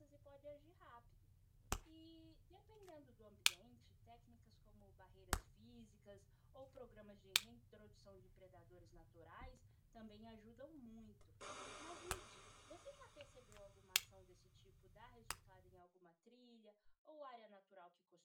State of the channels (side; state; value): both; identical; correlation 1.00